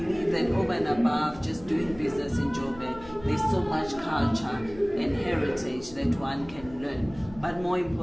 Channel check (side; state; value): left; noise; hum, 19 dB below the sound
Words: that over and above just doing business in Joburg, there's so much culture and heritage that one can learn. But more